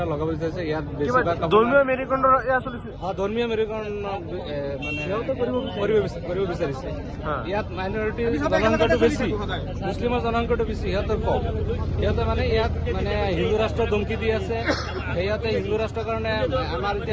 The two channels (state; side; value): identical; both; correlation 1.00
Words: লগাব বিচাৰিছে। ইয়াত ধৰ্মীয় মেৰুকৰণৰ ধৰ্মীয় মেৰুকৰণ মানে কৰিব বিচাৰিছে। ইয়াত মাইনৰিটি জনসংখ্যাটো বেছি, মুছলিমৰ জনসংখ্যাটো বেছি, সিহঁতৰ কম। সিহঁতে মানে ইয়াত মানে হিন্দু ৰাষ্ট্ৰ ধমকি দি আছে। সিহঁতে হিন্দু ৰাষ্ট্ৰৰ কাৰণে আমাৰ